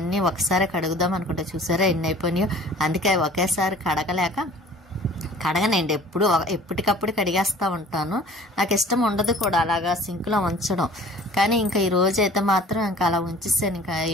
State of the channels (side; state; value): both; normal; correlation 0.48